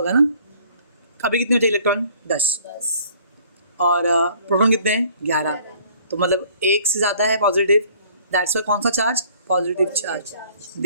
ना। अभी कितने होते हैं इलेक्ट्रॉन? 10। और प्रोटॉन कितने हैं? 11। तो मतलब 1 से ज़्यादा है पॉजिटिव, दैट्स वाई कौन सा charge? Positive charge.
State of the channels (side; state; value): both; inverted; correlation -0.56